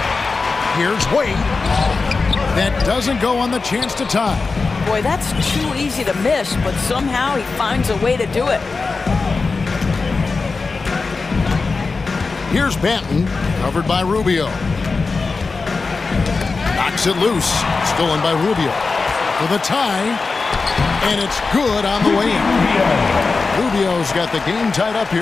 Here's Wade. That doesn't go on the chance to tie. Boy, that's too easy to miss, but somehow he finds a way to do it. Here's Banton, covered by Rubio. Knocks it loose, stolen by Rubio. For the tie, and it's good on the way in. Rubio's got the game tied up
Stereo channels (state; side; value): quieter; right; 4.2 dB